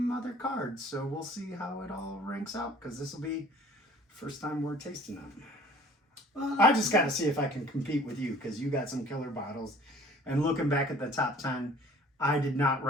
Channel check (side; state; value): both; normal; correlation 0.50